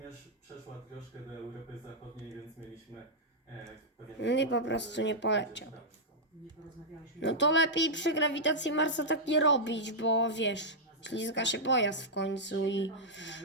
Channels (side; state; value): both; normal; correlation -0.07